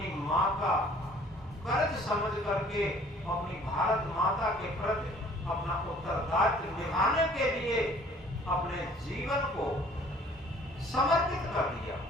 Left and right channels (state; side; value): normal; both; correlation 0.55